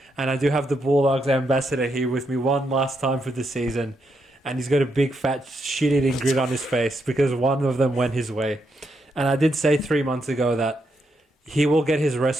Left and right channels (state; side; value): normal; both; correlation 0.80